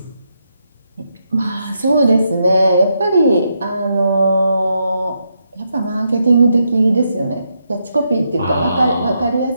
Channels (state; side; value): inverted; both; correlation -0.81